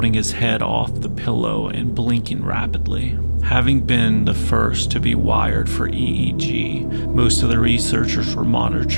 his head off the pillow and blinking rapidly. Having been the first to be wired for EEG, most of the researchers were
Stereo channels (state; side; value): inverted; both; correlation -1.00